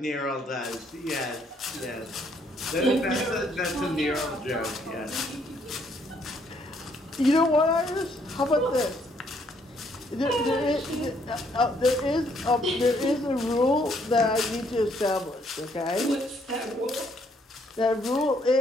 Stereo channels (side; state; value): both; normal; correlation 0.69